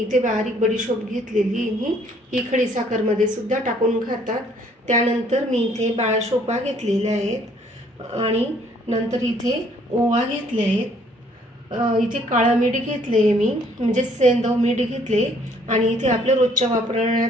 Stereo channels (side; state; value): both; normal; correlation 0.63